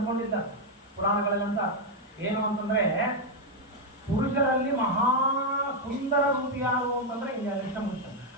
ಪುರಾಣಗಳಲ್ಲಂತ ಏನು ಅಂತಂದ್ರೆ, ಪುರುಷರಲ್ಲಿ ಮಹಾ ಸುಂದರ ರೂಪಿ ಯಾರು ಅಂತಂದ್ರೆ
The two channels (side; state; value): both; normal; correlation 0.01